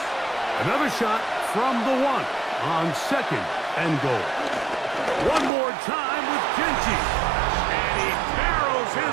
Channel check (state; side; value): drops out; left; at 5.5 s